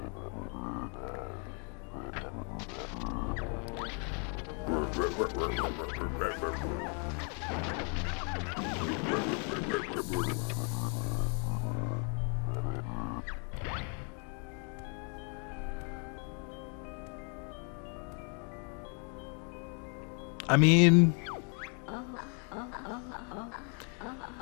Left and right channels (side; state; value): right; quieter; 39.0 dB